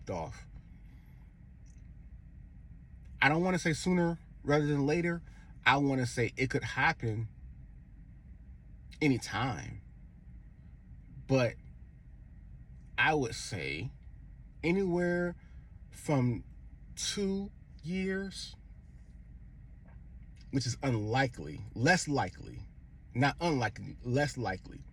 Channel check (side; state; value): both; identical; correlation 1.00